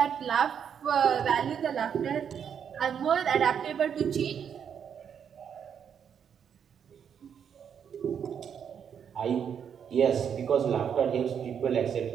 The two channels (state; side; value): quieter; left; 7.9 dB